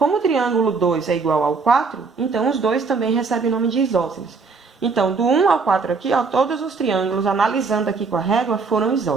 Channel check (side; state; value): left; quieter; 4.6 dB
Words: o triângulo 2 é igual ao 4, então os dois também recebem o nome de isósceles. Então, do 1 ao 4 aqui, ó, todos os triângulos, analisando aqui com a régua, foram